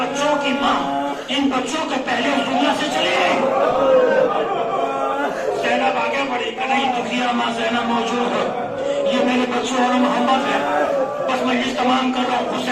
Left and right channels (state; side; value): identical; both; correlation 1.00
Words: کی ماں ان بچوں کے پہلے اس دنیا سے چلی گئی. زینب آگے بڑھی کہ نہیں دکھیا ماں زینب موجود ہے, یہ میرے بچوں اور محمد ہے, بس میں یہ تمام کر رہا ہوں.